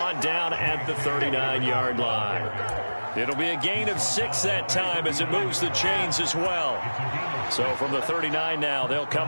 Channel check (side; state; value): both; inverted; correlation -1.00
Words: down at the 39-yard line. It'll be a gain of 6 that time as it moves the chains as well. So from the 39 now, they'll